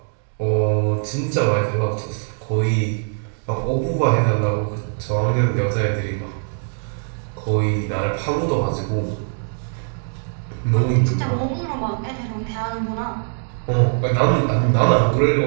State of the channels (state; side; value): silent; left; 65 dB below the other